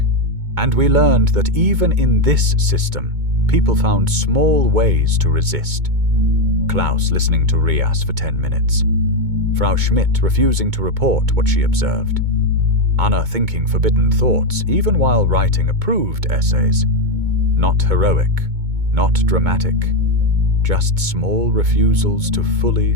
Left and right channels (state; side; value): late; left; 2.2 ms